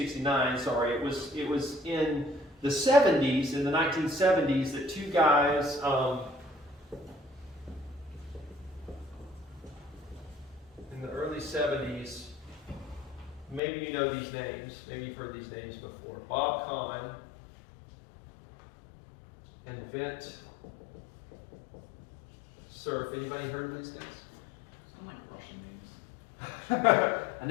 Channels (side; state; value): right; drops out; at 13.6 s